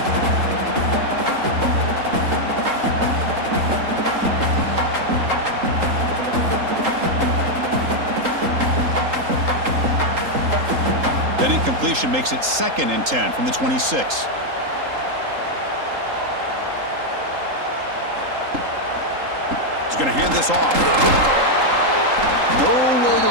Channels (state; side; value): late; left; 3.8 ms